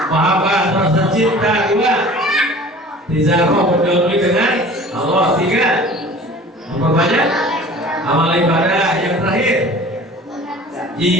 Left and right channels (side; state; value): both; normal; correlation 0.44